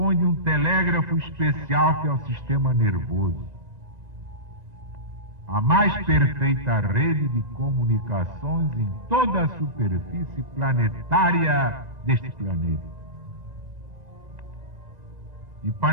de um telégrafo especial que é o sistema nervoso. A mais perfeita rede de comunicações em toda a superfície planetária deste planeta. E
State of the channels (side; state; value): left; late; 1.9 ms